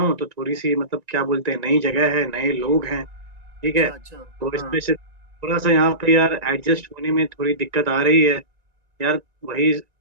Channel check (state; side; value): late; left; 1.9 ms